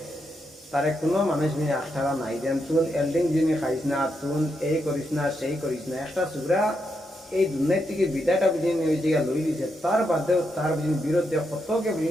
তারে কোনো মানুষ নিয়ে আস্থারা নাই যেন তুন এল্ডিং যিনি খাইস না তুন এই করিস না সেই করিস না। একটা সুগ্রা এই দুনিয়ার থেকে বিদায়টা বুঝিনি হয়েছে গিয়া লই দিছে তার বাদেও তার বুঝিনি বিরুদ্ধে কতকে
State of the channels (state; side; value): normal; both; correlation 0.82